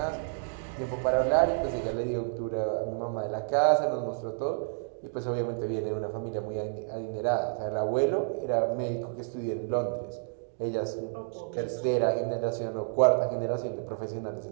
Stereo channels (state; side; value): silent; left; digital silence